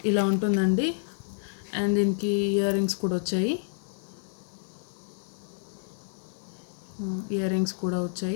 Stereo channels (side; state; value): right; silent; 59 dB below the other